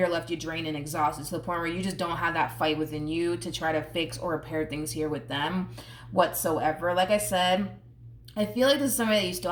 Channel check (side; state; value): both; identical; correlation 1.00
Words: left you drained and exhausted, to the point where you just don't have that fight within you to try to fix or repair things here with them whatsoever. Like I said, I feel like this is somebody that you still